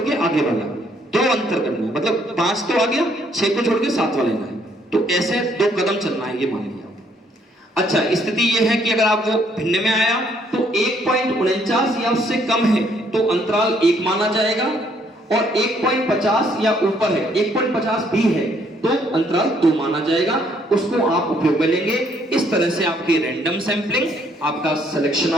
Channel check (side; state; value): both; normal; correlation 0.67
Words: आगे वाला, 2 अंतर करना है, मतलब 5 तो आ गया, 6 को छोड़ के 7 वाला लेना है। तो ऐसे 2 कदम चलना है, ये मान लिया। अच्छा, स्थिति ये है कि अगर आप वो भिन्न में आया तो 1.49 या उससे कम है तो अंतराल 1 माना जाएगा, और 1.50 या ऊपर है, 1.50 भी है तो अंतराल 2 माना जाएगा। उसको आप उपयोग में लेंगे। इस तरह से आपकी रैंडम सैंपलिंग, आपका सिलेक्शन